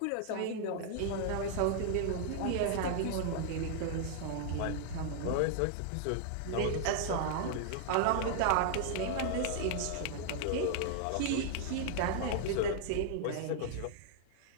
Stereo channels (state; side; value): different; both; correlation -0.01